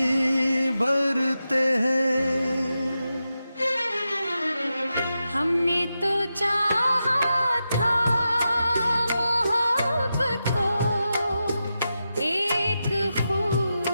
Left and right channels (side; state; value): both; inverted; correlation -0.89